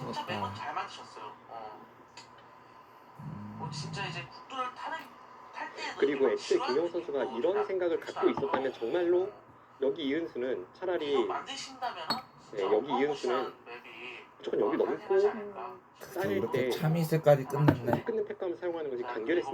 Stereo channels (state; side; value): identical; both; correlation 1.00